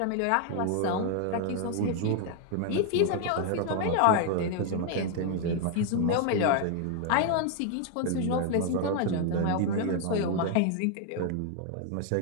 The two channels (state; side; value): different; both; correlation 0.00